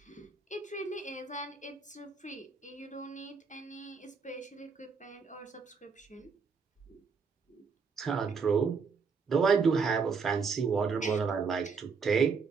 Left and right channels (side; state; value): left; quieter; 5.3 dB